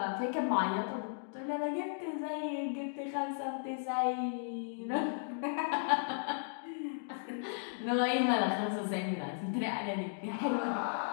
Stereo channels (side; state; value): right; silent; digital silence